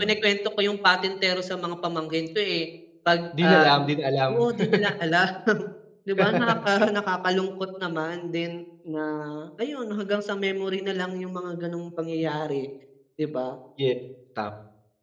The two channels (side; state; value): both; identical; correlation 1.00